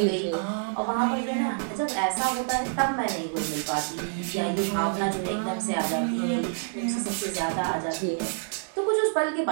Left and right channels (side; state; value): left; silent; digital silence